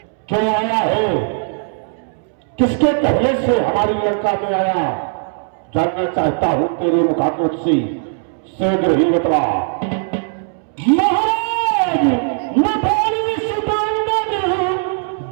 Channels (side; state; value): left; silent; 67 dB below the other